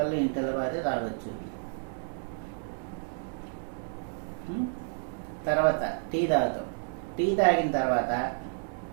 ఇంటిలో బాధే తాగొచ్చు. తర్వాత టీ తాగుతాం. టీ తాగిన తర్వాత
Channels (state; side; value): silent; left; digital silence